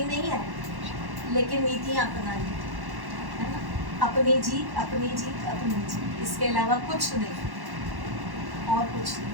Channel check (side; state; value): left; late; 1.1 ms